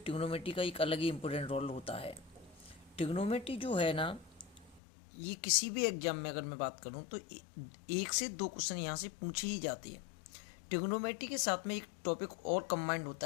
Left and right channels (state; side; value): drops out; right; at 4.8 s